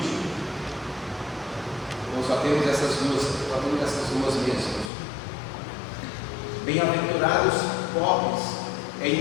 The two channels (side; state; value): right; drops out; at 4.9 s